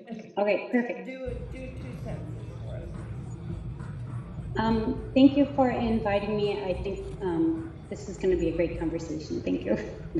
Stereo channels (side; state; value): both; identical; correlation 1.00